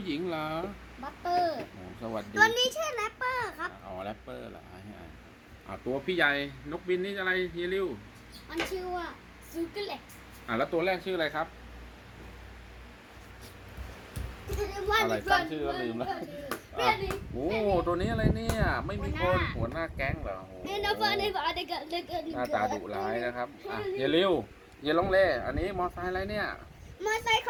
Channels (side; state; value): both; identical; correlation 1.00